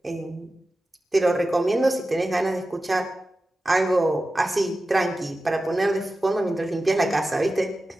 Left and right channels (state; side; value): normal; both; correlation 0.94